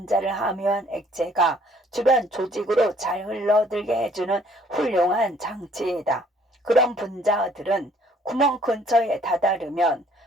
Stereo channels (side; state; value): both; normal; correlation 0.60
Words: 함유한 액체가 주변 조직으로 잘 흘러들게 해주는 훌륭한 장치이다. 그런 분자들은 구멍 근처에 다다르면